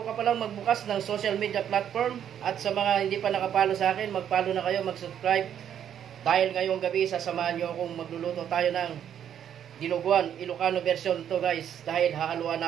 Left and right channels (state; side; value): quieter; left; 9.4 dB